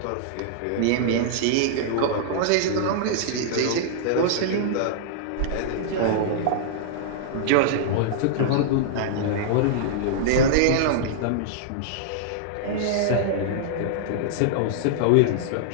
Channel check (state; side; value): different; both; correlation -0.01